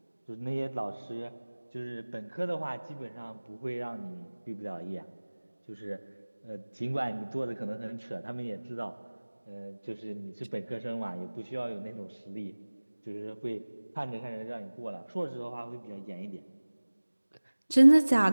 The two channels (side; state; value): both; inverted; correlation -1.00